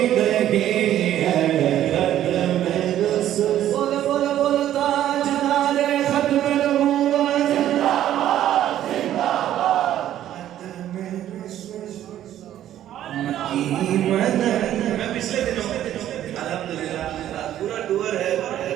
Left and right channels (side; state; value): left; quieter; 12.0 dB